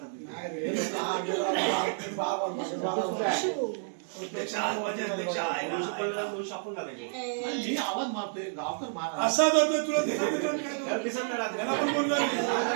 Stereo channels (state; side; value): silent; left; digital silence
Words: आवाज मारतोय गावकर मार असा करतोय तुला